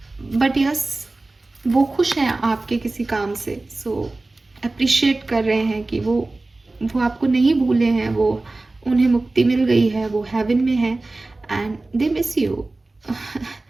बट यस, वो खुश हैं आपके किसी काम से। सो अप्रिशिएट कर रहे हैं कि वो आपको नहीं भूले हैं, वो उन्हें मुक्ति मिल गई है, वो हेवन में है and they miss you.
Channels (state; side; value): quieter; left; 3.1 dB